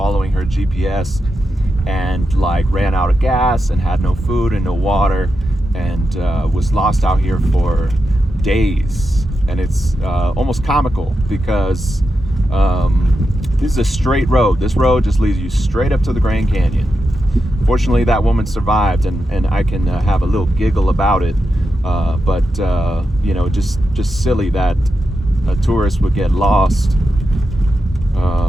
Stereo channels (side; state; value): both; normal; correlation 0.88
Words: her GPS, and like ran out of gas and had no food and no water, and was lost out here for days. And it's almost comical because this is a straight road. This road just leads you straight up to the Grand Canyon. Fortunately, that woman survived, and I can have a little giggle about it. But you know, just silly that a tourist would get lost.